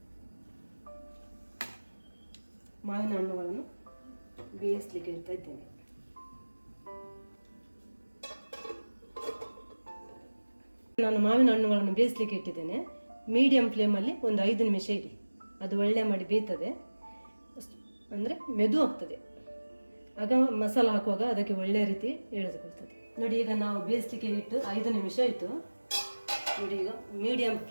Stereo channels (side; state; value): both; inverted; correlation -1.00